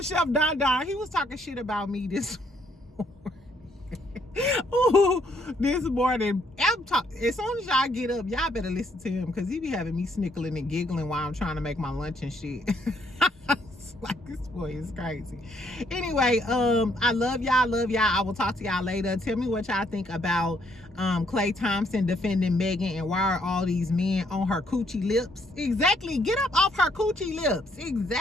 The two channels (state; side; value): normal; both; correlation 0.70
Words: Chef Don Don. He was talking shit about me this morning. Ooh, this morning, as soon as y'all get up, y'all better listen to him because he be having me snickling and giggling while I'm trying to make my lunch and shit. It's like, this boy is crazy. Anyway, I love y'all. I will talk to y'all later. Tell me what y'all think about Klay Thompson defending Megan, and why are all these men on her coochie lips? Exactly. Get up off her coochie lips.